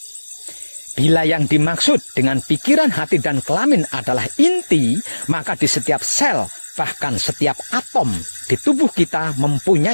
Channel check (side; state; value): both; inverted; correlation -1.00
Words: Bila yang dimaksud dengan pikiran, hati, dan kelamin adalah inti, maka di setiap sel, bahkan setiap atom di tubuh kita